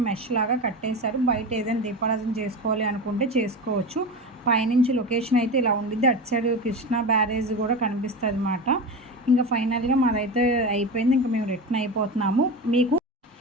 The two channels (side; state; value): both; normal; correlation 0.24